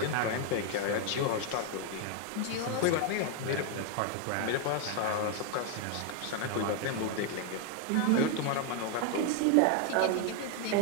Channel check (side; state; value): both; different; correlation 0.01